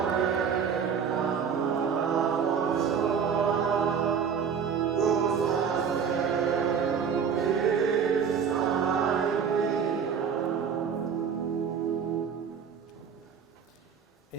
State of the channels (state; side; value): quieter; left; 7.0 dB